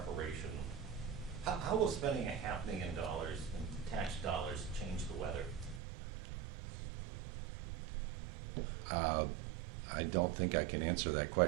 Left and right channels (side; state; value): left; drops out; at 5.8 s